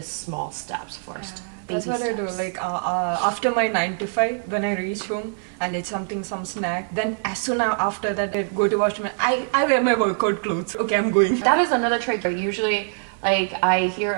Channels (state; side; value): silent; left; digital silence